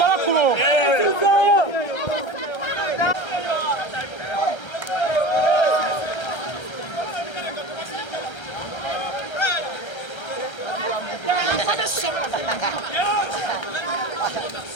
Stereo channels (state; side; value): late; right; 1.3 ms